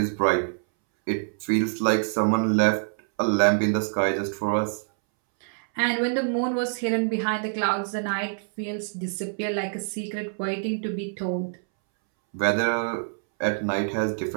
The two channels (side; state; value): left; silent; 61 dB below the other